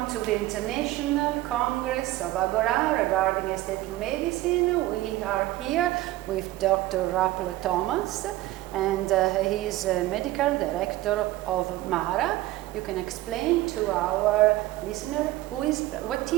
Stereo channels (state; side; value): quieter; left; 16.7 dB